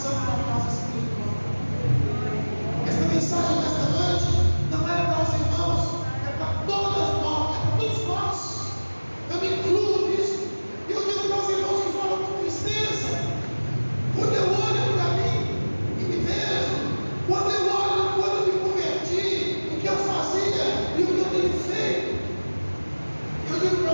da casa espiritual. Esta mensagem desta noite não é para os irmãos, é para todas nós, é para todos nós. Eu me incluo nisso. E eu digo para os irmãos que falam com tristeza, quando eu olho para mim e me vejo, quando eu olho, quando eu me converti, o que eu fazia e o que eu tenho feito, eu digo para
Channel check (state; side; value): inverted; both; correlation -1.00